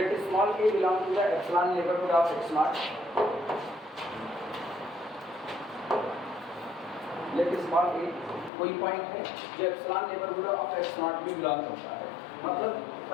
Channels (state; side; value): drops out; right; at 8.5 s